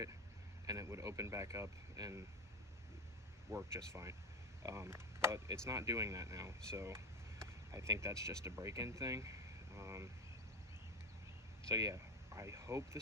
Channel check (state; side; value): normal; both; correlation 0.18